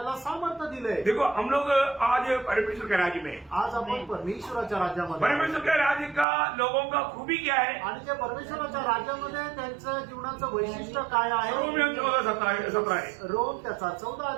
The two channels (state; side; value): drops out; left; at 6.2 s